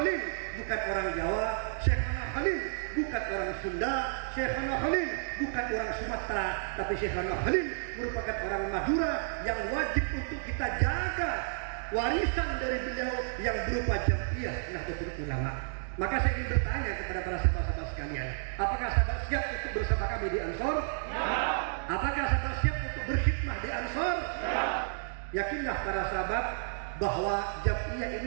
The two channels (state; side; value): silent; left; digital silence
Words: bukan orang Jawa, Syekhana Khalil bukan orang Sunda, Syekhana Khalil bukan orang Sumatera, tapi Syekhana Khalil merupakan orang Madura yang wajib untuk kita jaga warisan dari beliau yang berupa Jamiah Nahdlatul Ulama. Maka saya ingin bertanya kepada para sahabat-sahabat sekalian, apakah sahabat siap untuk bersama kami di Ansor? Ya. Apakah sahabat siap untuk berkhidmah di Ansor? Ya. Yakinlah para sahabat bahwa Jamiah